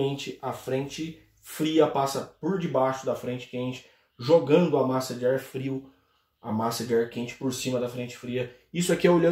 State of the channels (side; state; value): both; identical; correlation 1.00